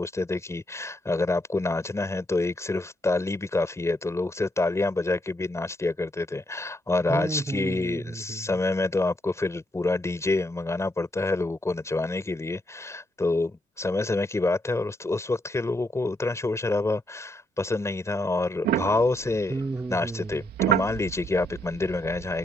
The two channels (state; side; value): normal; both; correlation 0.77